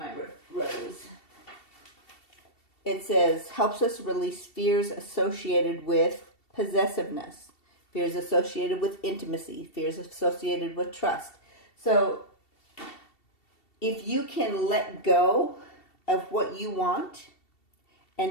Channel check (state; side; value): late; right; 2.7 ms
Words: rose? It says, helps us release fears associated with possessiveness, fears associated with intimacy, fears associated with trust. So if you can let go of what you want